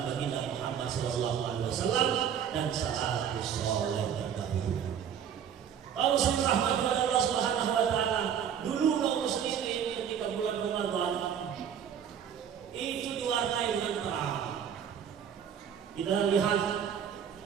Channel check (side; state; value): left; quieter; 8.4 dB